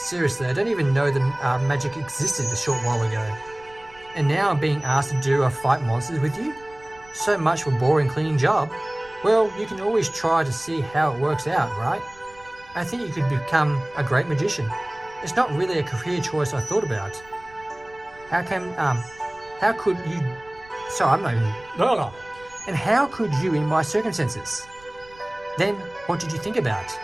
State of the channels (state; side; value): noise; right; rumble, 25 dB below the sound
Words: I don't even know that magic existed a short while ago. And now I'm being asked to do a fight monsters with you? So much for a boring cleaning job. Well, you can always try to see how it works out, right? I think you could become a great magician. It's not really a career choice I thought about. How could you... Sorry, I'm not even... No. And how could you in my circumstances? Then, what did you think about?